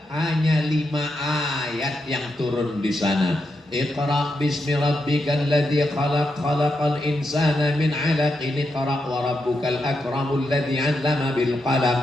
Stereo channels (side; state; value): both; normal; correlation 0.84